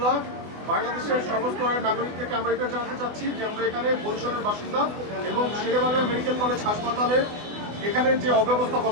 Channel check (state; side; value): late; left; 24 ms